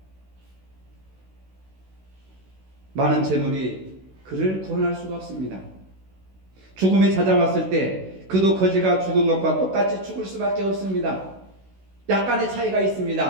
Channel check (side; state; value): left; late; 16 ms